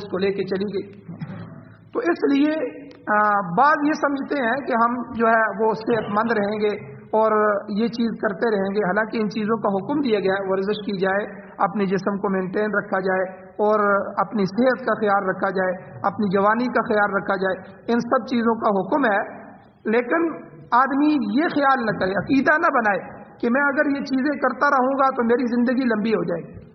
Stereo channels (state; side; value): identical; both; correlation 1.00